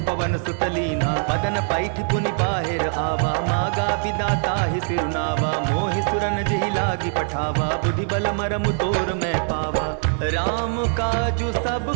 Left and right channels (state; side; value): silent; left; 64 dB below the other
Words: पवन सुत लीन्हा। बदन पैठ पुनि बाहिर आवा, मागा बिदाता ही सिरुनावा। मोहि सुरन जेहि लागी पठावा, बुद्धि बल मरम तोर मैं पावा। राम काजु सब